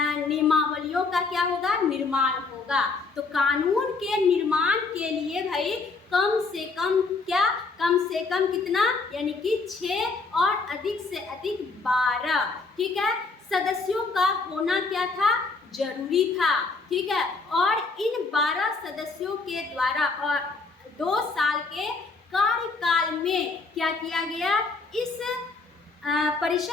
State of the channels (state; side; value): quieter; right; 4.0 dB